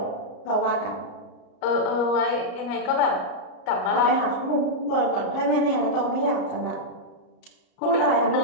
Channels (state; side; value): late; right; 34 ms